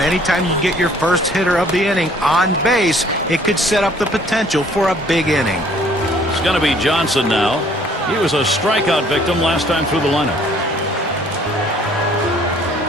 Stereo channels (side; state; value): both; normal; correlation 0.58